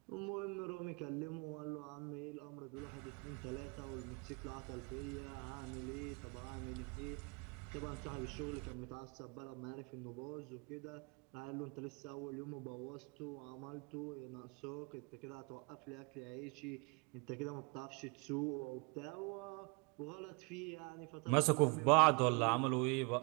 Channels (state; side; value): quieter; left; 31.7 dB